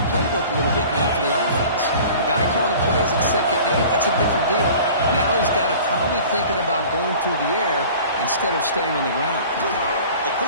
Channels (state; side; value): inverted; both; correlation -0.44